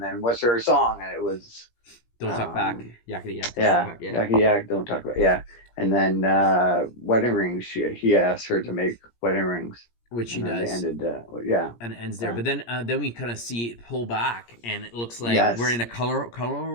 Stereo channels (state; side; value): late; right; 17 ms